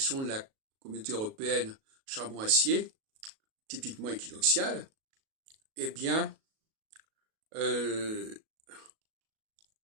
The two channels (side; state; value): left; late; 37 ms